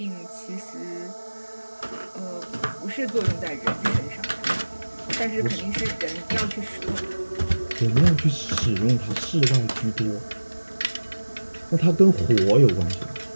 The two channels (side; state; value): both; inverted; correlation -1.00